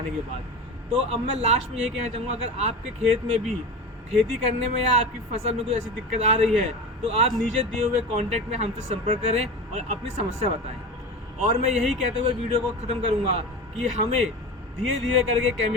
के बाद। तो अब मैं लास्ट में ये कहना चाहूँगा, अगर आपके खेत में भी खेती करने में या आपकी फसल में कोई ऐसी दिक्कत आ रही है तो आप नीचे दिए हुए कॉन्टैक्ट में हमसे संपर्क करें और अपनी समस्या बताएं। और मैं यही कहते हुए वीडियो को ख़त्म करूँगा कि हमें धीरे धीरे करके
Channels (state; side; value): normal; both; correlation 0.28